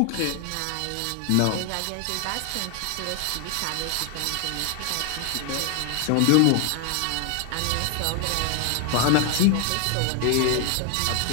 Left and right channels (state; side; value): different; both; correlation 0.00